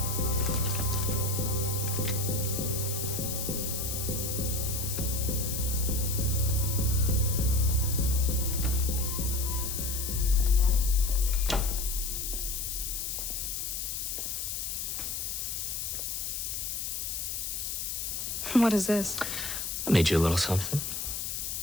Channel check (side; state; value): left; noise; hiss, 3 dB below the sound